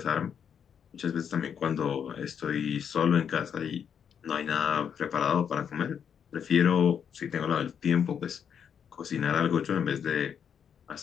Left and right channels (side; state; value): right; quieter; 7.8 dB